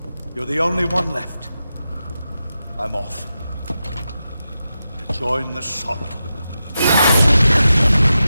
You're the only one left. I'm off. To join the sorrow.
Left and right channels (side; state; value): both; inverted; correlation -0.90